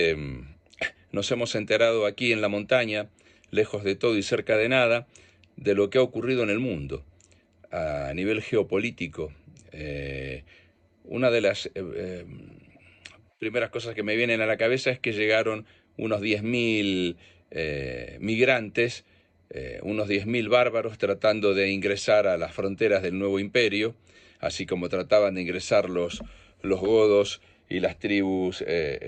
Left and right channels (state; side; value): identical; both; correlation 1.00